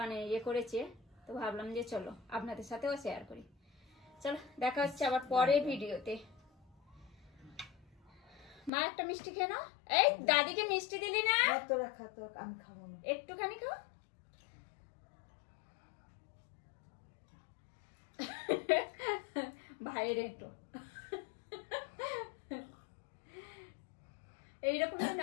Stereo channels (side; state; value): right; drops out; at 8.7 s